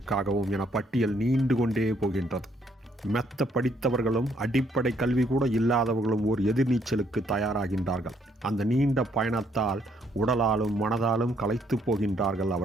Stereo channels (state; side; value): normal; both; correlation 0.69